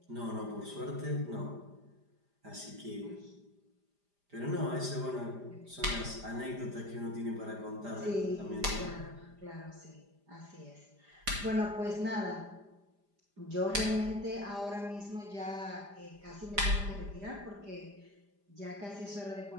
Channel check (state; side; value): late; left; 5.0 ms